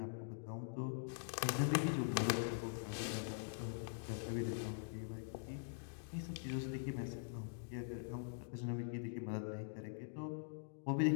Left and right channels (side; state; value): right; silent; digital silence